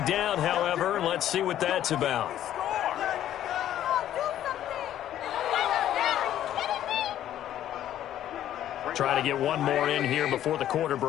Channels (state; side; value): quieter; right; 11.7 dB